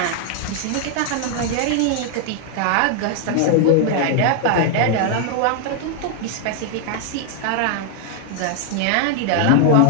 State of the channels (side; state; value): both; different; correlation 0.00